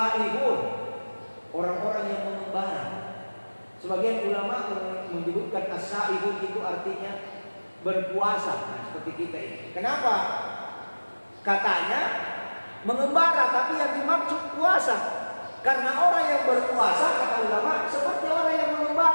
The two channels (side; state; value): both; inverted; correlation -1.00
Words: orang-orang yang mengembara. Sebagian ulama menyebutkan as-saihun itu artinya berpuasa, nah, seperti kita ini. Kenapa? Katanya mengembara, tapi yang dimaksud puasa. Karena orang yang berpuasa, kata ulama, seperti orang yang